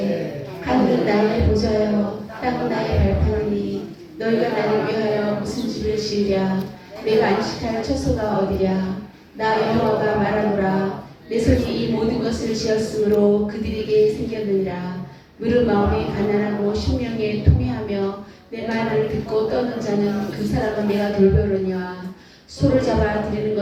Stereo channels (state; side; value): identical; both; correlation 1.00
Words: 하늘은 나의 보좌여 땅은 나의 발판이니 너희가 나를 위하여 무슨 집을 지으랴. 내가 안식할 처소가 어디랴. 나 여호와가 말하노라. 내 손이 이 모든 것을 지었으므로 그들에게 생겼느니라. 무릇 마음이 가난하고 심령에 통회하며 내 말을 듣고 떠는 자는 그 사람은 내가 돌보려니와. 소를 잡아 드리는